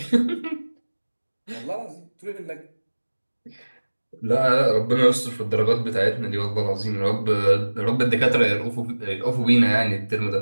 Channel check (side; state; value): both; inverted; correlation -1.00